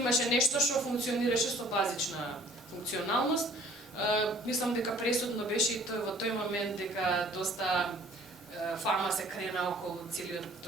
нешто што функционираше со базична функционалност. Мислам дека пресудно беше и во тој момент дека доста фама се крена околу целиот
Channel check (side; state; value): both; normal; correlation 0.53